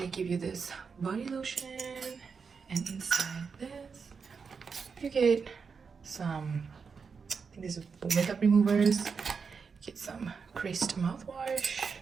give you this body lotion, and inside this you get some, I think this is makeup removers. You get some creased mouthwash.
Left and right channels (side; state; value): left; quieter; 5.5 dB